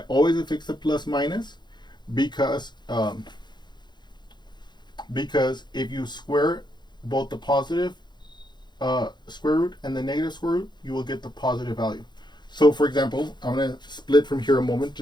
always affix the plus minus because if you square both the positive square root and the negative square root, you will get the positive value. So for example, I'm going to split from here a moment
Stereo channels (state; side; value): late; right; 0.21 ms